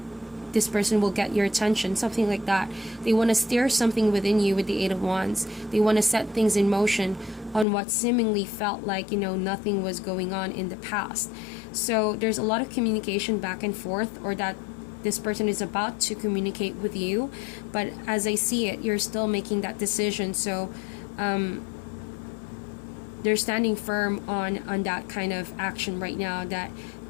this person will get your attention, something like that. They want to steer something within you with the 8 of Wands. They want to set things in motion on what seemingly felt like nothing was going on in the past. So there's a lot of communication back and forth, or that this person is about to communicate with you, but as I see it, you're still making that decision. So they're standing firm on that kind of action right now, that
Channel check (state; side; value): drops out; right; at 7.7 s